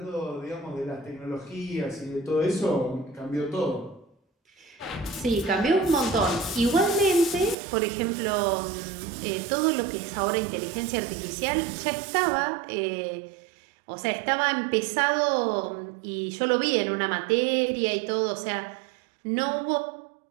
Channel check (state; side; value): drops out; left; at 7.6 s